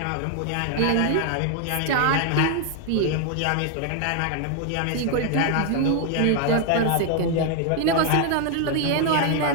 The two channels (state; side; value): different; both; correlation 0.00